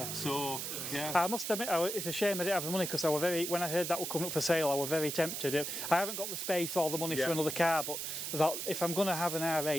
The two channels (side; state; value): right; noise; hiss, 4 dB below the sound